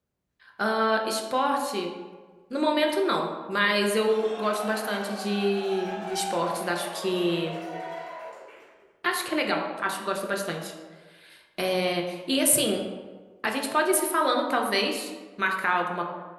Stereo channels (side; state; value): both; identical; correlation 1.00